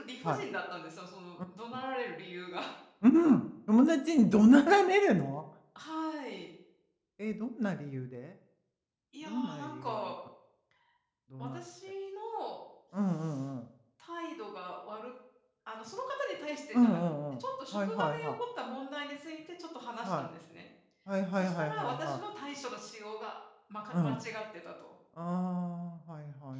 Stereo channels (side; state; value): both; identical; correlation 1.00